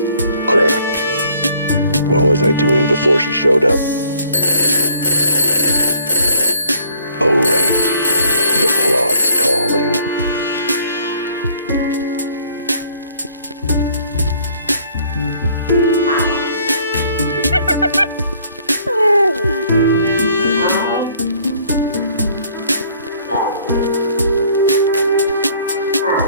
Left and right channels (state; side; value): inverted; both; correlation -0.59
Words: crap. What was I doing before she showed up? Oh, right. The plot's calling.